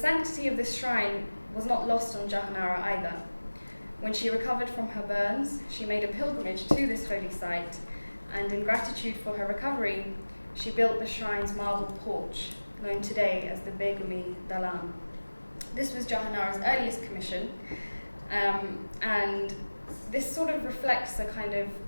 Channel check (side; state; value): both; inverted; correlation -1.00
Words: of this shrine was not lost on Jahanara either. When she recovered from her burns, she made a pilgrimage to this holy site, and in gratitude for her recovery, she built the shrine's marble porch, known today as the Begumi Dalan. This was Jahanara's earliest commission, and this sort of reflects a kind of